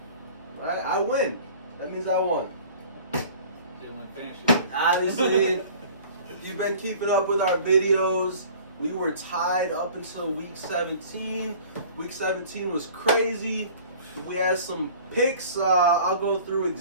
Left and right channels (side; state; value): both; inverted; correlation -0.46